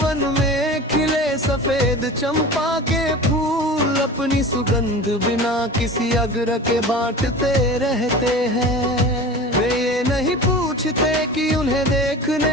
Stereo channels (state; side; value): normal; both; correlation 0.35